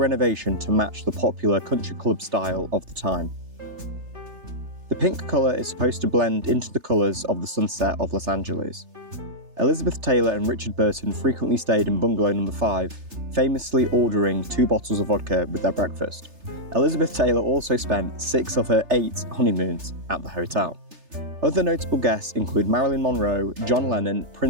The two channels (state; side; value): late; left; 3.3 ms